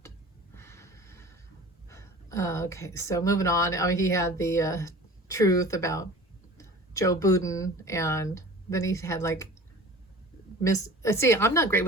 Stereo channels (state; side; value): normal; both; correlation 0.41